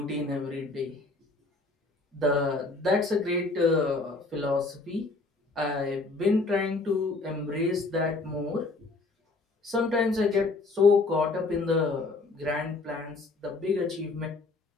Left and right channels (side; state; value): right; quieter; 3.5 dB